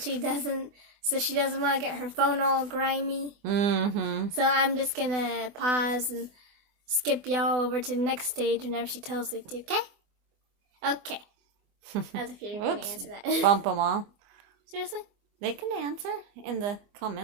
doesn't, so she doesn't want to get her phone all grimy. Mm-hmm. So I'm just going to pause and skip y'all over to the next stage whenever she tells me to, okay? Okay. As if you're going to answer that. Bump them all. Seriously? They can answer in the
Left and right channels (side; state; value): left; late; 24 ms